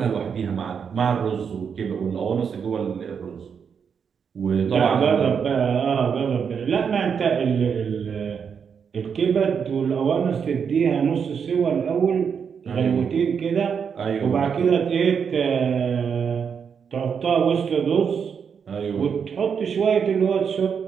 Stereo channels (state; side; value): quieter; left; 6.8 dB